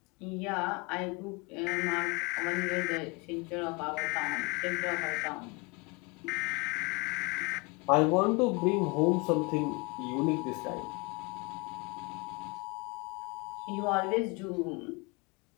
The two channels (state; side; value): quieter; right; 29.0 dB